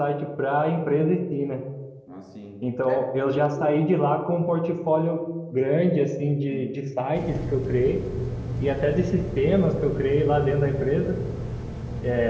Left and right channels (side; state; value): both; identical; correlation 1.00